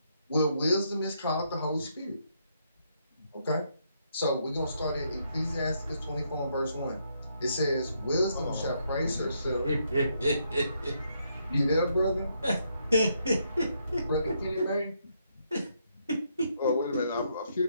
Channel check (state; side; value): inverted; both; correlation -0.75